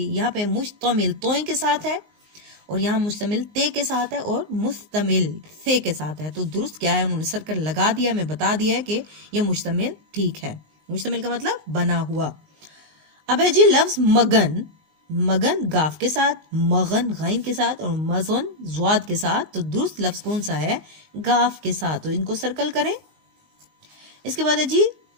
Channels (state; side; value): late; left; 19 ms